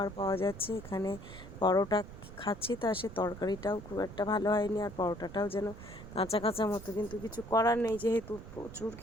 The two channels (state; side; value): noise; right; rumble, 14 dB below the sound